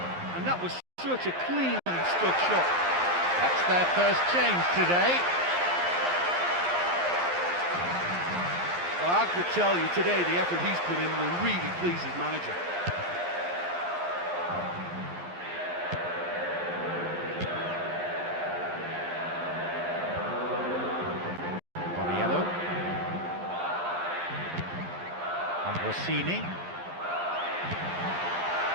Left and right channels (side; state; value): left; late; 11 ms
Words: and that was such a cleanly struck shot. That's their first change today. Well, I have to tell you, today the effort he's put in will really please his manager. Borriello. And Rossini.